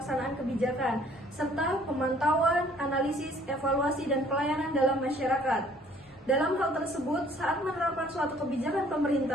kebijakan, serta pemantauan, analisis, evaluasi, dan pelayanan dalam masyarakat. Dalam hal tersebut, saat menerapkan suatu kebijakan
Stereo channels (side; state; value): both; normal; correlation 0.58